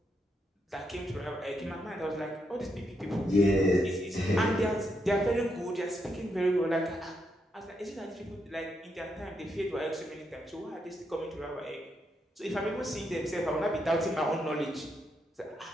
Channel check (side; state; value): both; normal; correlation 0.80